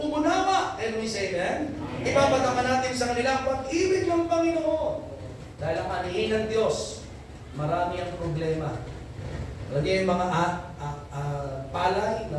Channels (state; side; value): identical; both; correlation 1.00